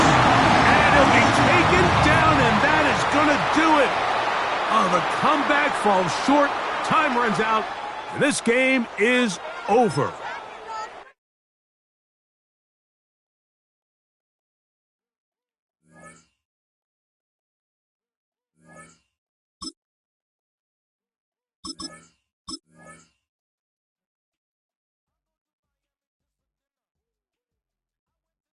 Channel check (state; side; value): identical; both; correlation 1.00